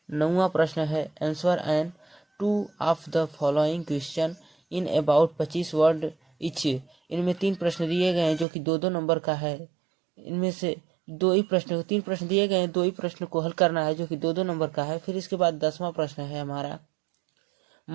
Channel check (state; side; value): drops out; left; at 8.5 s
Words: है answer and 2 of the following question in about 25 word etch. इनमें 3 प्रश्न दिए गए हैं, जो कि 2-2 नंबर का है। इनमें से 3 प्रश्न दिए गए हैं, 2 ही प्रश्न को हल करना है, जो कि 2-2 नंबर का है। फिर इसके बाद 10वां प्रश्न है हमारा